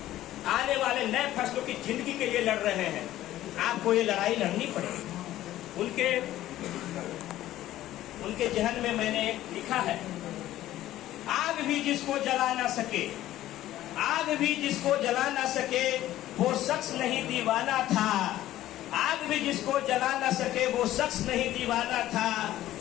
की जिंदगी के लिए लड़ रहे हैं। आपको ये लड़ाई लड़नी पड़ेगी। उनके जहन में मैंने लिखा है, आग भी जिसको जला ना सके वो शख्स नहीं दीवाना था। आग भी जिसको जला ना सके वो शख्स नहीं दीवाना था।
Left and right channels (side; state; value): right; quieter; 14.1 dB